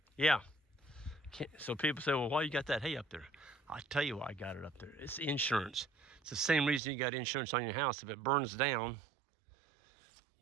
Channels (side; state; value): left; drops out; at 6.8 s